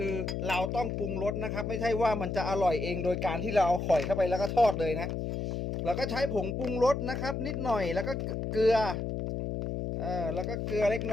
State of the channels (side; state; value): left; noise; hum, 3 dB below the sound